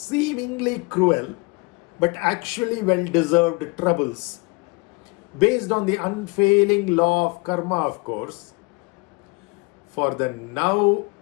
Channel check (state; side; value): quieter; right; 28.1 dB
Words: cruel but actually well-deserved troubles, based on the unfailing law of karma, of course, for the now